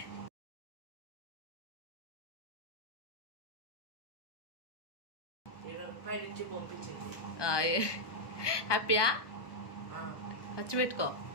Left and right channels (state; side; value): late; right; 1.2 ms